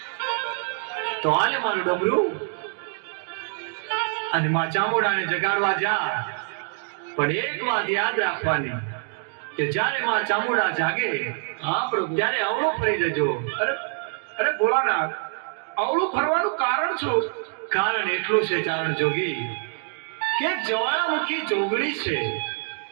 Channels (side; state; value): left; silent; 56 dB below the other